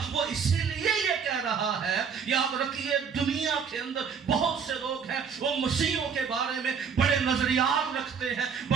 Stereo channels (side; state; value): left; quieter; 6.5 dB